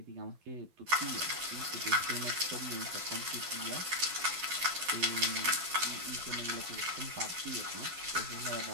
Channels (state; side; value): late; left; 12 ms